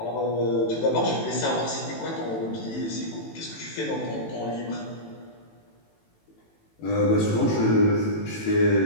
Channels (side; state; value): right; late; 18 ms